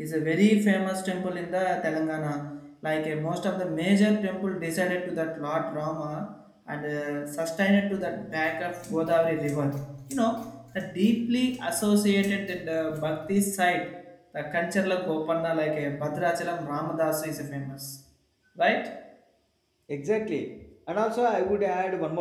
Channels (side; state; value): both; identical; correlation 1.00